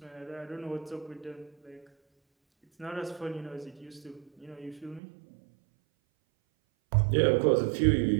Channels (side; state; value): left; drops out; at 5.0 s